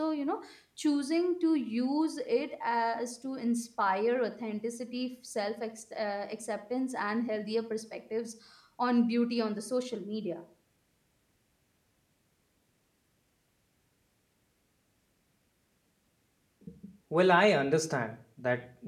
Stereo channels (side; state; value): both; identical; correlation 1.00